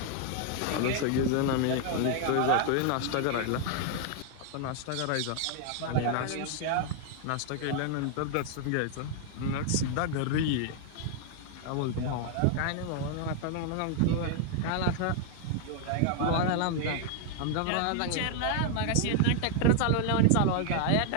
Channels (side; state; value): both; different; correlation 0.00